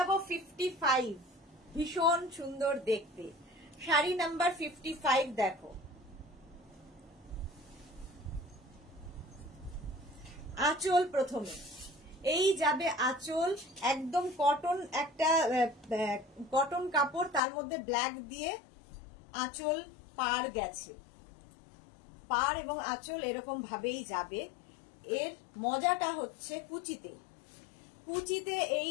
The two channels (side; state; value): right; drops out; at 17.4 s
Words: 55, ভীষণ সুন্দর দেখতে শাড়ি নাম্বার 55। দেখো আঁচল প্রথমে, এই যাবে আঁচল, একদম কটন, একটা কটন কাপড়, তার মধ্যে ব্ল্যাক দিয়ে আঁচল পার গেছে, পার এবং আঁচল এরকম ভাবেই যাবে। এর মজাটা হচ্ছে কুচিতে, কুচিতে